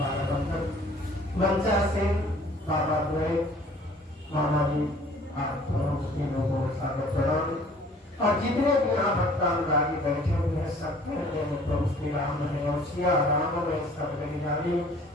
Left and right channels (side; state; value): both; normal; correlation 0.53